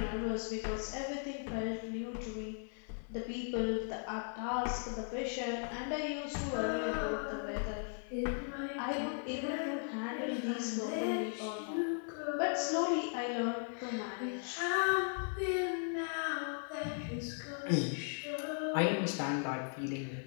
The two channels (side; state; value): right; silent; 53 dB below the other